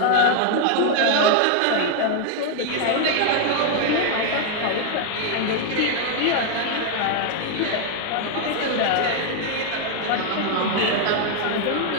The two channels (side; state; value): both; different; correlation 0.00